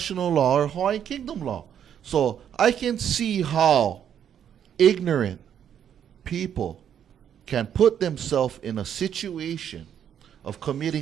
law or Hawaiian Kingdom law. So I can see how ignorant people can put themselves in a situation of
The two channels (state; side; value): quieter; left; 9.2 dB